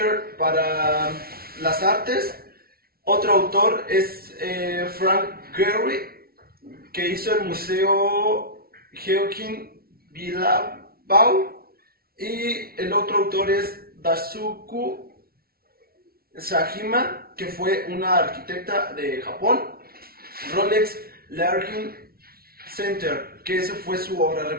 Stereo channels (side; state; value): left; late; 0.44 ms